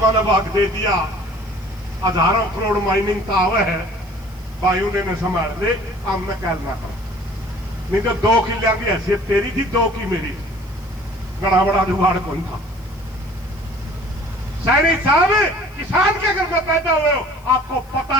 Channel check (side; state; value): left; noise; hiss, 28 dB below the sound